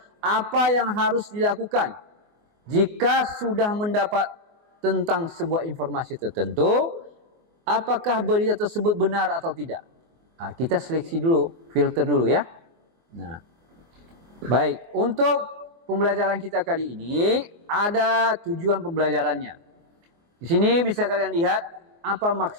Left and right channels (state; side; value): late; left; 24 ms